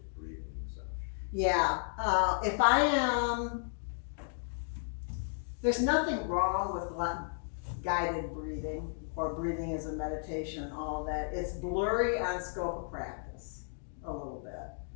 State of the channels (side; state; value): right; silent; digital silence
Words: breathing massage? Yeah, if I am, there's nothing wrong with guided breathing or breathing as a meditation, all of that. It's blurry on scope of practice a little bit.